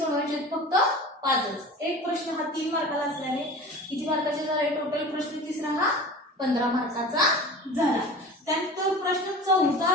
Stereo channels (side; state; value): both; normal; correlation 0.37